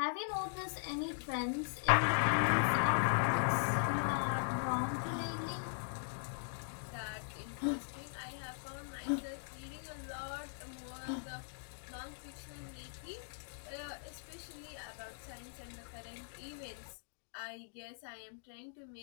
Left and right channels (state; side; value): silent; right; digital silence